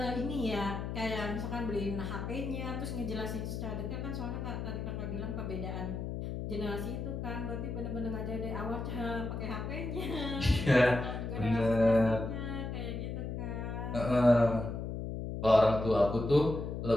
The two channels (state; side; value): noise; left; hum, 4 dB below the sound